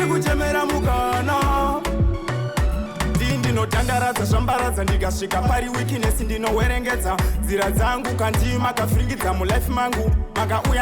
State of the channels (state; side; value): identical; both; correlation 1.00